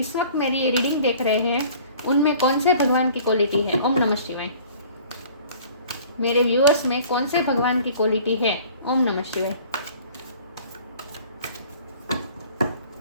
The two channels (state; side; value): inverted; both; correlation -0.49